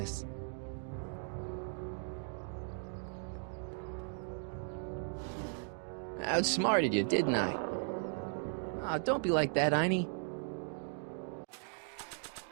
I outsmarted you, didn't I? Oh, don't be like that, Einie.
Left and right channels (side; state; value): left; silent; 53 dB below the other